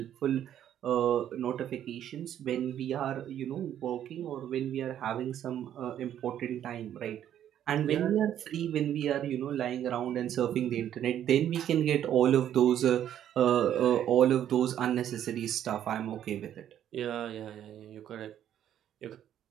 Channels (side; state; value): left; quieter; 10.6 dB